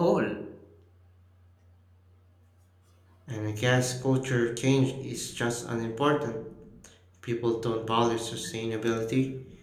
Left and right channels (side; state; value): both; identical; correlation 1.00